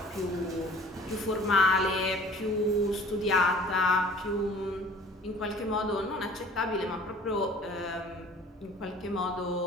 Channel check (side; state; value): both; normal; correlation 0.49